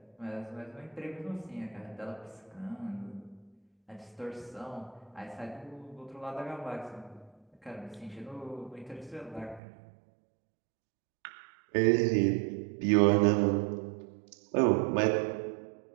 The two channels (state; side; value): drops out; left; at 9.6 s